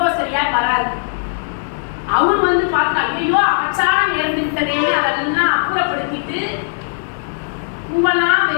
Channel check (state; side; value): silent; right; 62 dB below the other